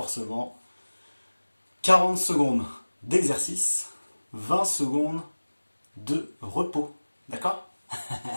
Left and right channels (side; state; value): both; inverted; correlation -1.00